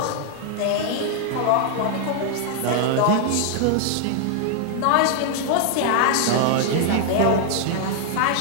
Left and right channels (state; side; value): different; both; correlation -0.01